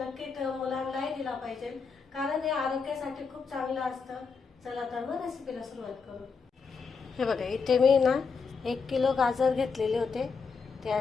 मुलांनाही दिला पाहिजे, कारण हे आरोग्यासाठी खूप चांगलं असतं। चला तर मग रेसिपीला सुरुवात करू। हे बघा, इथे मी ना 1 किलो गाजर घेतलेले होते, ते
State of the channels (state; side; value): quieter; right; 5.2 dB